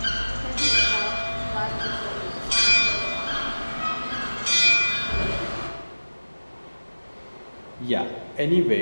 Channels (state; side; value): inverted; both; correlation -1.00